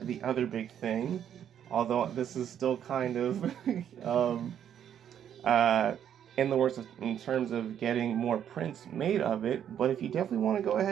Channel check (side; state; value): left; quieter; 9.5 dB